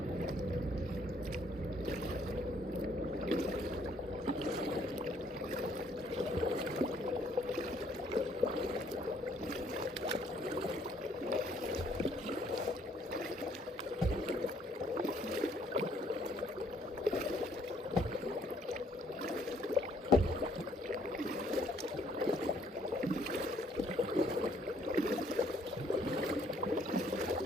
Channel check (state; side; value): normal; both; correlation 0.64